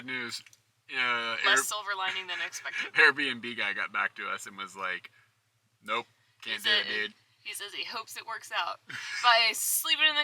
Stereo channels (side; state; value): both; identical; correlation 1.00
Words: news. Less silver lining than expected. Airbnb guy got back to us and was like, nope, can't do it, dude. He says he hopes it works out. By sleeping in